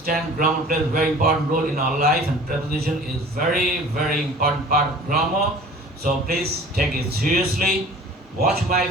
grammar plays a very important role in our life, and preposition is very, very important part of grammar. So please take it seriously. Watch my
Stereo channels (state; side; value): normal; both; correlation 0.45